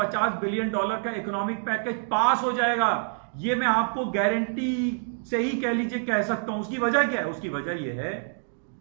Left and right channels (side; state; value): left; silent; digital silence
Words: बिलियन डॉलर का इकोनॉमिक पैकेज पास हो जाएगा। ये मैं आपको गारंटी से ही कह लीजिए कह सकता हूं। उसकी वजह क्या है? उसकी वजह यह है